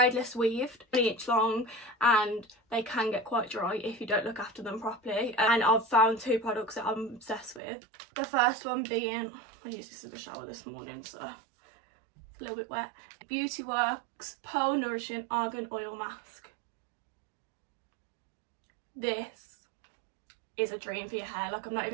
weaved, 1 inch long, and they can get quite dry if you don't look after them properly. And I've found 2 products that I'm obsessed with. The first one being, I used this in the shower this morning, so it's a little bit wet. Beauty Works Pearl Nourishing Argan Oil Mask. This is a dream for your hair, like I'm not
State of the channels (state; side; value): drops out; left; at 7.6 s